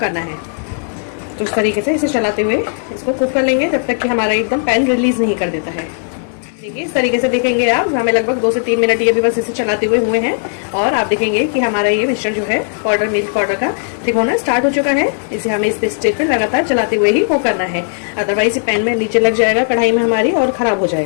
है। तो इस तरीके से इसे चलाते हुए इसको कुक कर लेंगे जब तक कि हमारा एकदम पैन रिलीज नहीं कर देता है। देखिए इस तरीके से देखेंगे आप, हमें लगभग 2 से 3 मिनट ये भी बस इसे चलाते हुए हैं और आप देखेंगे कि हमारा ये मिक्सचर जो है पाउडर मिल्क पाउडर का थिक होना स्टार्ट हो चुका है। इसे हमें इस स्टेज पे लगातार चलाते हुए ही कुक करना है, अदरवाइज पैन में नीचे लग जाएगा कढ़ाई में हमारी और खराब हो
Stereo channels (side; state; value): right; silent; digital silence